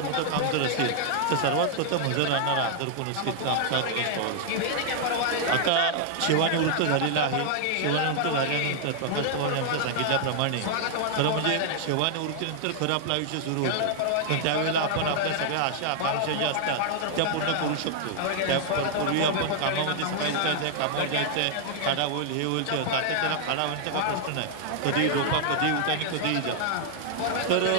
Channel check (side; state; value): both; different; correlation -0.01